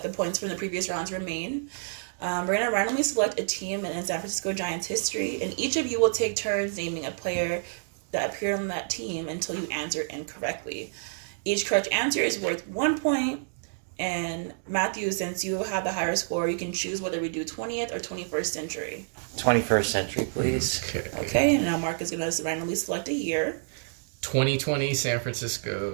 the points from the previous rounds remain. We're going to randomly select a team in San Francisco Giants history, and each of you will take turns naming a player that appeared on that team until you answer incorrectly. Each correct answer is worth 1 point, and Matthew, since you have the higher score, you can choose whether we do 20th or 21st century. 21st century, please. Okay, and now Mark is going to randomly select a year. 2020 San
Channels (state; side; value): silent; left; digital silence